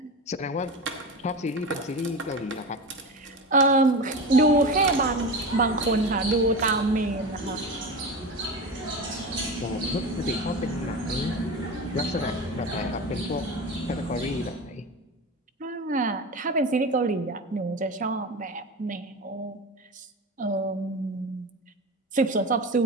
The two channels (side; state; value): both; normal; correlation 0.26